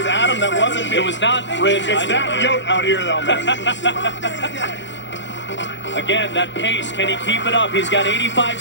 Adam. That wasn't me. It was not Rich. It's that yote out here, though, man. Again, that pace. Can he keep it up? He's got 85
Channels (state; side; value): late; right; 0.53 ms